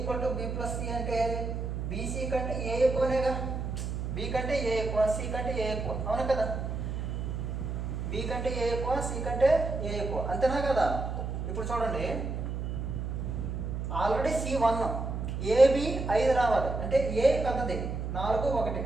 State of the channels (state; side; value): noise; right; hum, 3 dB below the sound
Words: to B plus C అంటే బీసీ కంటే ఏ ఎక్కువనేగా. బి కంటే ఏ ఎక్కువ, సి కంటే ఏ ఎక్కువ, అవునా కదా? బి కంటే ఏ ఎక్కువ, సి కంటే ఏ ఎక్కువ, అంతేనా కదా? ఇప్పుడు చూడండి, ఆల్రెడీ C1, ఏబి 5 రావాలి అంటే ఏ పెద్దది 4 1